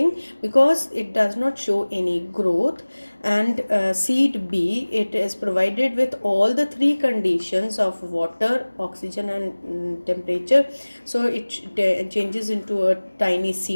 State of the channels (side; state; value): both; inverted; correlation -1.00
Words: because it does not show any growth, and seed B, it is provided with all the three conditions of water, oxygen and temperature, so it changes into a tiny